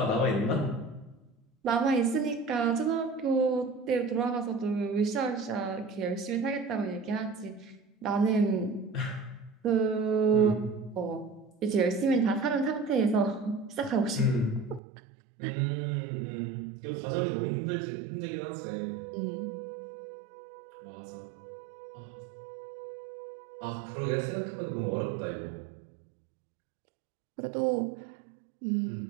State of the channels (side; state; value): left; drops out; at 14.8 s